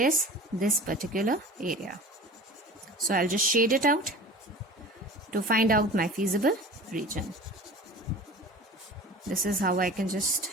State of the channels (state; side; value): normal; both; correlation 0.39